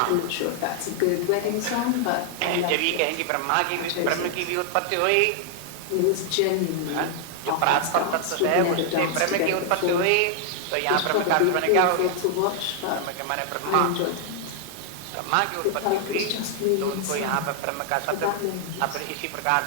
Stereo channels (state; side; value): different; both; correlation 0.00